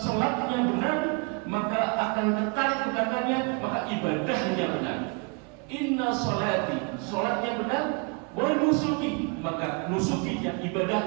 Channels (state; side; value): quieter; left; 33.5 dB